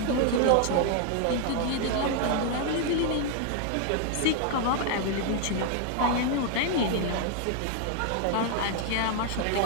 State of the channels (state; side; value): different; both; correlation 0.00